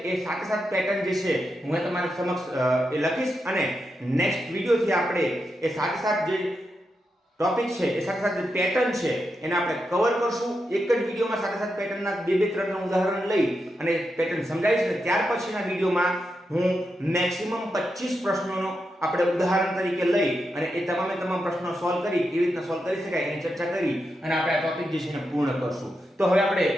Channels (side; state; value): both; normal; correlation 0.86